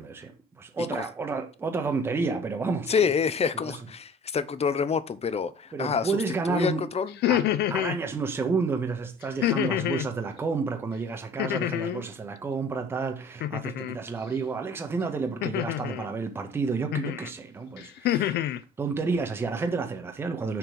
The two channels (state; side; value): normal; both; correlation 0.48